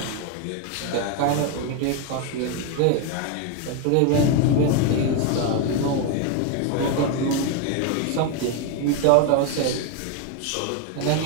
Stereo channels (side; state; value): both; different; correlation 0.01